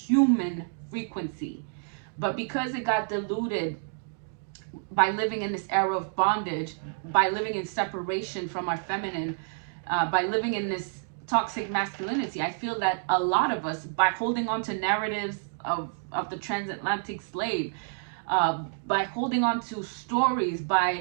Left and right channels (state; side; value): silent; left; digital silence